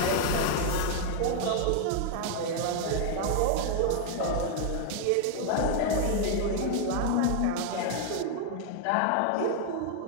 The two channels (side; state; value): both; different; correlation 0.00